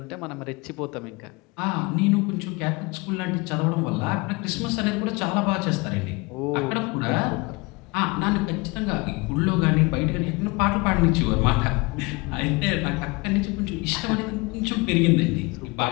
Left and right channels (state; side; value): quieter; right; 25.9 dB